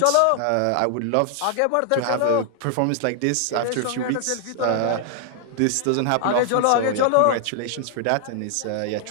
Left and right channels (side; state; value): both; different; correlation 0.00